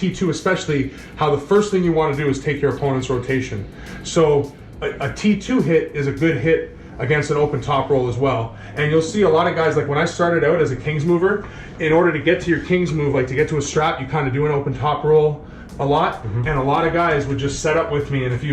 especially how the first thing you want to do is take your opponent's rotation. So a T2 hit is a good hit against an open top roll as well. And you'll see a lot of guys, like when I started out as a King's mover, in order to get to your King's move, like to get to a strap, you kind of do an open top roll a lot, and a lot of guys would just set up with me, and if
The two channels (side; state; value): both; identical; correlation 1.00